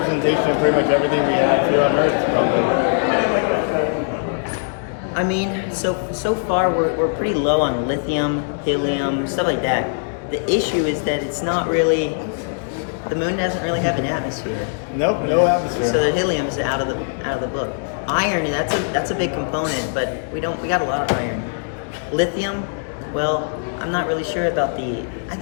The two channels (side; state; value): right; silent; digital silence